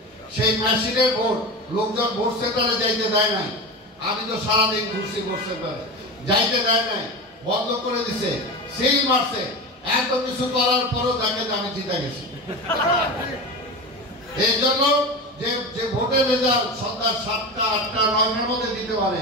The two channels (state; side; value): normal; both; correlation 0.25